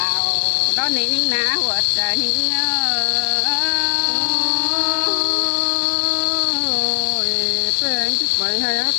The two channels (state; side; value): silent; right; digital silence